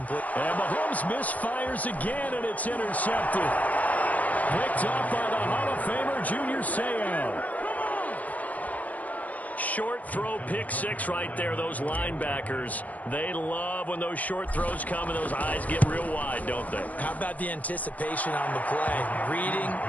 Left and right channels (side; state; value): right; late; 0.073 ms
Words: And Mahomes misfires again, and it's intercepted. Picked up by the Hall of Famer, Junior Seau. Short throw, pick six right there. Those linebackers, they love when those short throws come and those eyes get real wide, don't they? How about the anticipation on the play? Reading,